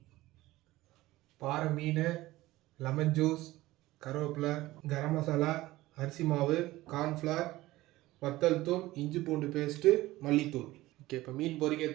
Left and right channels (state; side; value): quieter; left; 17.7 dB